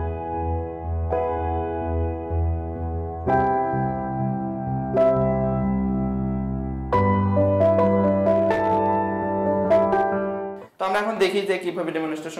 তো আমরা এখন দেখি যে কিভাবে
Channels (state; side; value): identical; both; correlation 1.00